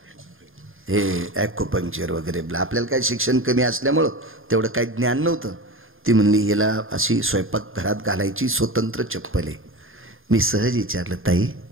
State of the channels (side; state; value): left; late; 0.59 ms